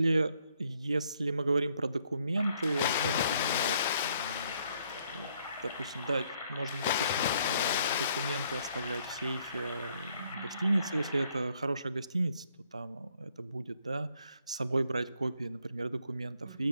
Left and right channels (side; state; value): both; inverted; correlation -0.69